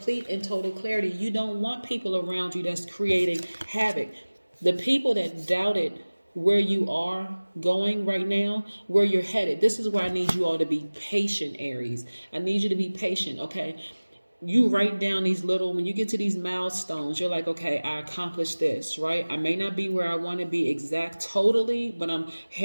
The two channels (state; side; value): inverted; both; correlation -1.00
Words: and total clarity. You don't want people around you that's creating havoc. The people that doubted where you are going right now, where you're headed, this is where I need you all to be patient, Aries. I need you to be patient, okay? You write down these when you get to these milestones, you're like, okay, I accomplished this, right? I may not be where I want to be totally, but I'm